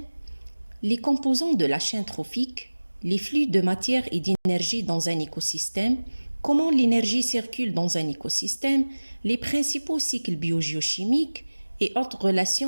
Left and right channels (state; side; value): inverted; both; correlation -1.00